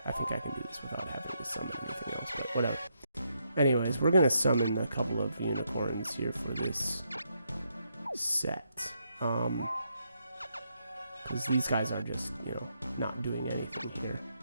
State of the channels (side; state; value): both; inverted; correlation -0.78